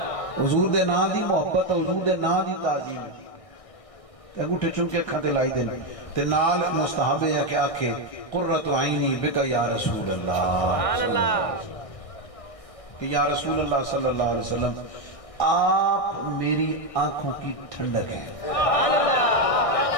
حضور دے نام دی محبت، حضور دے نام دی تعظیم ہے۔ انگوٹھے چونکے اکھاں تے لائی دیں تے نال مستحب ہے کہ آکھے قرۃ عینی بک یا رسول اللہ، کہ یا رسول اللہ صلی اللہ علیہ وسلم آپ میری آنکھوں کی ٹھنڈک ہیں۔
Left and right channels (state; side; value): late; right; 1.6 ms